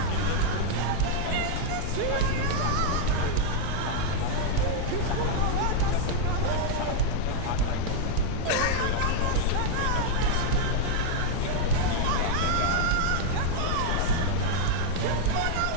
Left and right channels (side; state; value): both; different; correlation 0.00